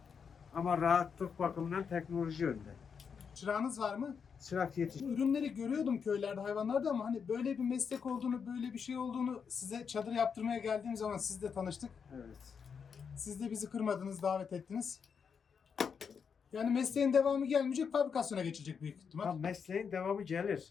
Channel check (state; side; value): quieter; right; 6.4 dB